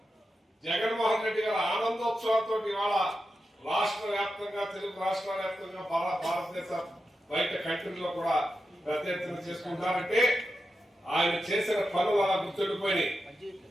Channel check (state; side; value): normal; both; correlation 0.89